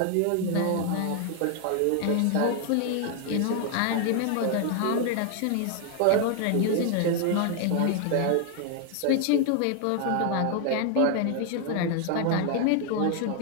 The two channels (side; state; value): both; different; correlation 0.00